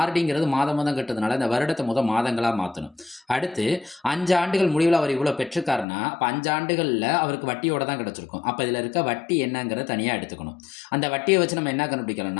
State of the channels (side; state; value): right; drops out; at 5.9 s